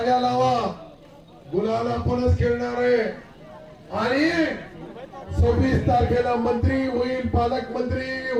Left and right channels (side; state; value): both; identical; correlation 1.00